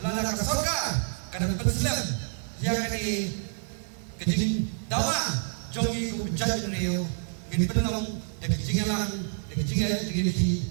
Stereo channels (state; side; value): silent; left; digital silence